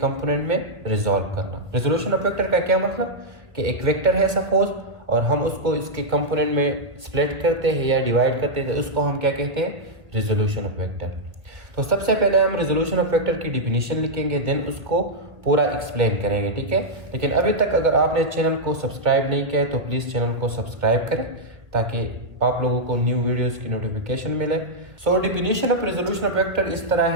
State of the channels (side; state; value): left; late; 1.6 ms